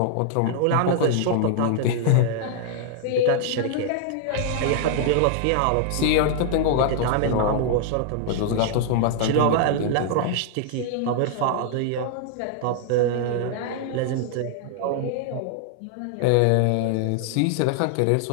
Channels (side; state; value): both; different; correlation -0.01